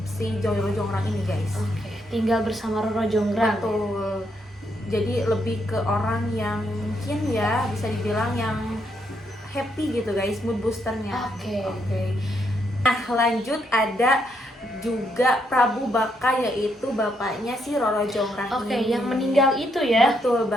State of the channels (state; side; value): normal; both; correlation 0.77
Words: si Roro Jonggrang ini guys. Oke, tinggal bersama Roro Jonggrang. Betul. Jadi lebih ke orang yang mungkin ya bisa dibilang yang happy gitu guys, mood boosternya. Oke. Nah, lanjut ada juga Prabu Baka, yaitu bapaknya si Roro Jonggrang Oke, ini. yang meninggal itu ya. Betul